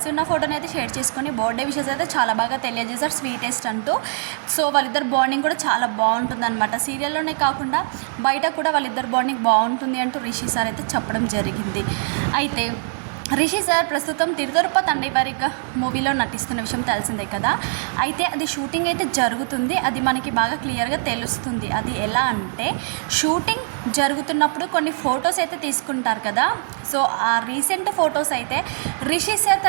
ఉన్న ఫోటోని అయితే షేర్ చేసుకుని బర్త్డే విషెస్ అయితే చాలా బాగా తెలియజేశారు, స్వీటెస్ట్ అంటూ. సో వాళ్ళిద్దరు బాండింగ్ కూడా చాలా బాగుంటుంది అనమాట. సీరియల్లోనే కాకుండా బయట కూడా వాళ్ళిద్దరు బాండింగ్ బాగుంటుంది అంటూ రిషి సార్ అయితే చెప్పడం జరిగింది. అయితే రిషి సార్ ప్రస్తుతం తిరుతరుప తండ్రివారిగా మూవీలో నటిస్తున్న విషయం తెలిసిందే కదా. అయితే అది షూటింగ్ అయితే జరుగుతుంది. అది మనకి బాగా క్లియర్గా తెలుస్తుంది. అది ఎలా అంటే, షూటింగ్ జరుగుతున్నప్పుడు కొన్ని ఫొటోస్ అయితే తీసుకుంటారు కదా. సో ఆ రీసెంట్ ఫొటోస్ అయితే రిషి సార్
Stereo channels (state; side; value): silent; left; digital silence